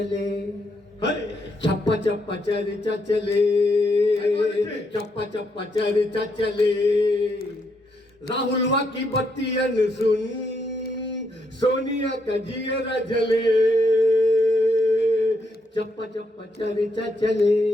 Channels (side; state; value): both; normal; correlation 0.77